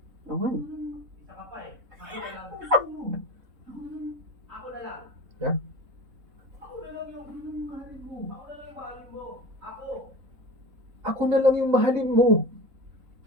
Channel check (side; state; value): left; late; 3.7 ms